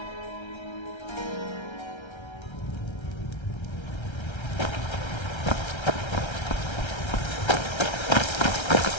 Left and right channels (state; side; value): late; right; 1.3 ms